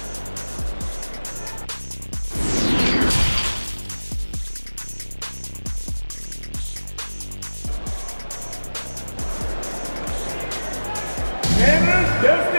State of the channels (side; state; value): both; inverted; correlation -1.00